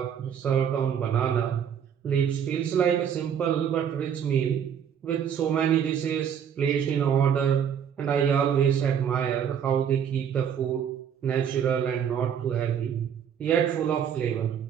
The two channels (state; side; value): quieter; left; 8.3 dB